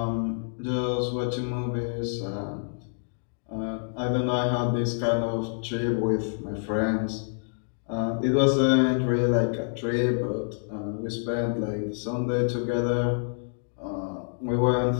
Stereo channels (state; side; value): silent; right; digital silence